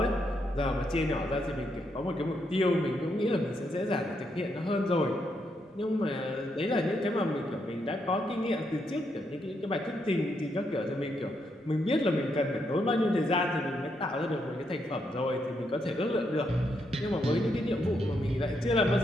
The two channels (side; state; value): both; normal; correlation 0.79